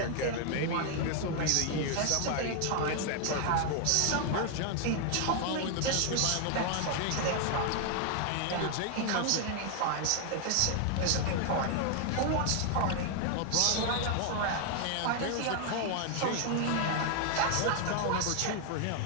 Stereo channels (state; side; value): different; both; correlation 0.00